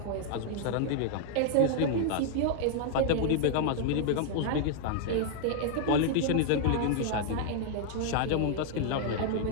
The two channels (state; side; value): different; both; correlation 0.00